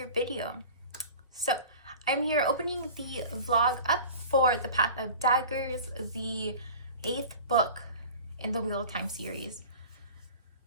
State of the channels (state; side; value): inverted; both; correlation -0.39